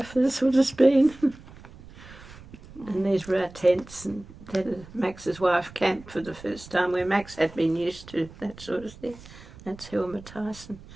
that's what it's been. And these were our tents, and Max's wife camped for the first time, where Max had been used to that sort of thing. That's Hilmer Tyson.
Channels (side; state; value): right; noise; rumble, 19 dB below the sound